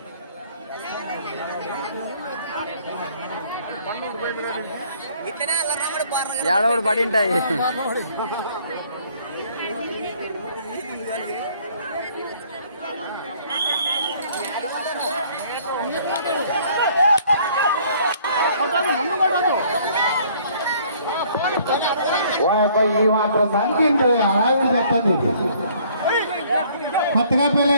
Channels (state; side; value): inverted; both; correlation -0.59